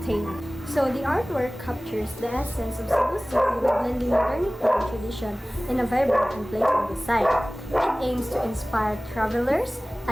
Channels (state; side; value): normal; both; correlation 0.98